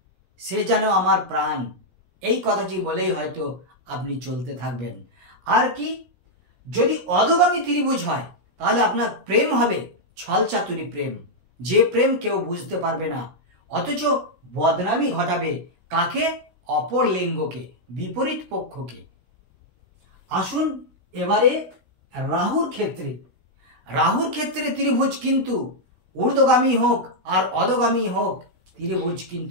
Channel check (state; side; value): late; left; 16 ms